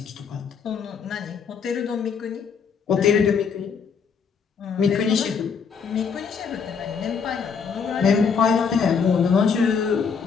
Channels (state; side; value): quieter; right; 6.1 dB